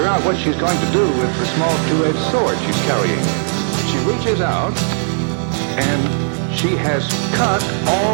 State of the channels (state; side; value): silent; left; 60 dB below the other